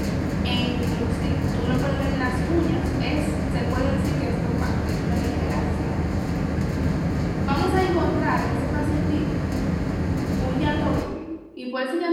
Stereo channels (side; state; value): both; identical; correlation 1.00